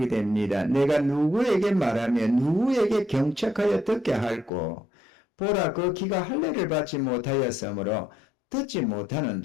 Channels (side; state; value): right; drops out; at 4.5 s